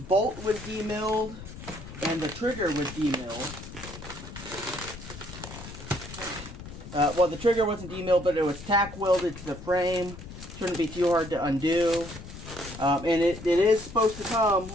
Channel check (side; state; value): left; noise; rumble, 13 dB below the sound